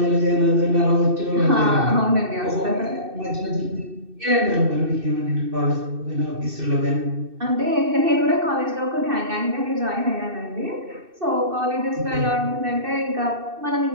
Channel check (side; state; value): left; late; 2.6 ms